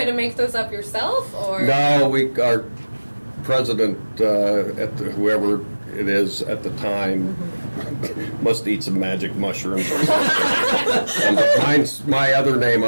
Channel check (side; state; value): both; inverted; correlation -1.00